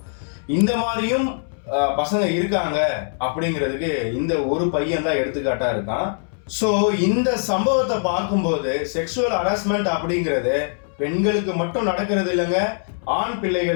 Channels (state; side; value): silent; right; 64 dB below the other